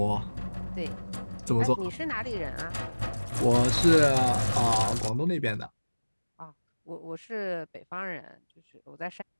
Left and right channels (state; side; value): inverted; both; correlation -1.00